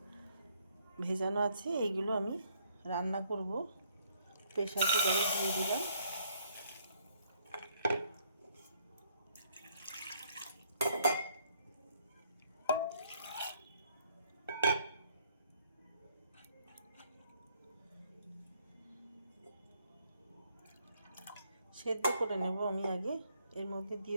ভেজানো আছে, এইগুলো আমি রান্না করব। প্রেসার কুকারে দিয়ে দিলাম। সেদ্ধ করে নেব আমি আগে। এর মধ্যে দিয়ে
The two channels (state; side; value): inverted; both; correlation -0.68